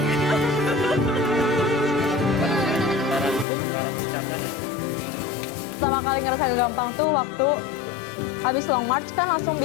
Pertama kali ngerasa gampang tuh waktu habis long march kan langsung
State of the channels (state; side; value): drops out; right; at 3.5 s